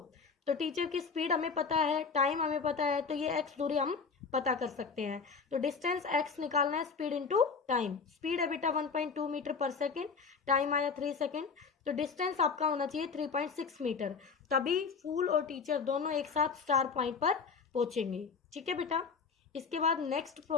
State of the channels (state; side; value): quieter; right; 5.3 dB